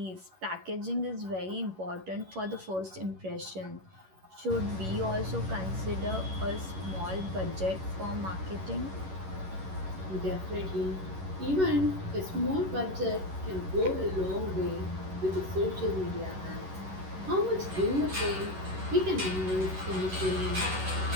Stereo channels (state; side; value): late; left; 11 ms